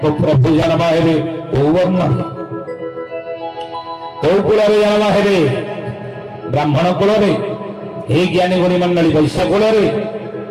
तो प्रभु जन्म हेबे ओ वर्ण कौ कूल जन्म हेबे ब्राह्मण कूल हे ज्ञानी गुणी मंडली वैश्य कूल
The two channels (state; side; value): identical; both; correlation 1.00